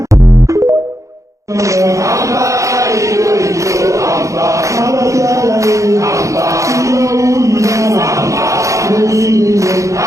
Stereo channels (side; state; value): left; late; 0.15 ms